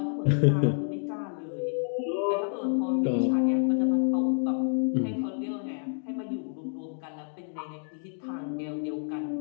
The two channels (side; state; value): right; silent; 59 dB below the other